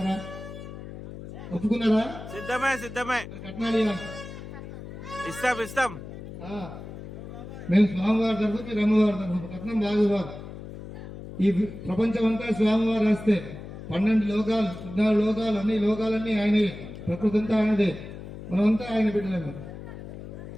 ఒప్పుకున్నారా? సిద్ధమే. కట్నాలు ఇవ్వాలి. ఇస్తాం. మేము స్వామివారి తరఫు, మీరు అమ్మవారి తరఫు. కట్నం బాగా ఇవ్వాలి. ఈ ప్రపంచం అంతా స్వామివారు వస్తే 12 లోకాలు 14 లోకాలు అన్ని లోకాలన్నీ ఆయనే. ప్రకృతి అంతా ఆయనదే. మనమంతా ఆయన బిడ్డలేము.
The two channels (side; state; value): left; noise; hum, 12 dB below the sound